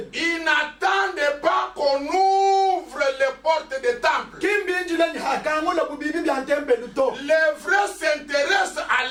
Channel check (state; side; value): identical; both; correlation 1.00